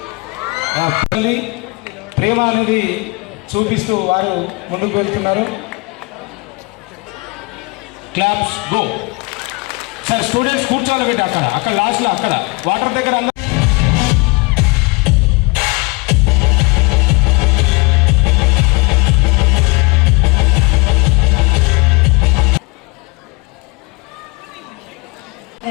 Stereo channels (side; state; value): right; quieter; 27.4 dB